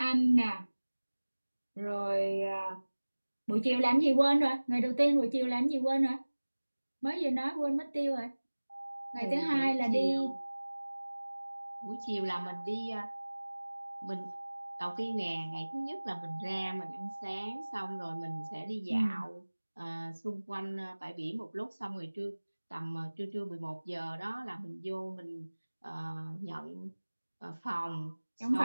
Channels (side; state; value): both; inverted; correlation -1.00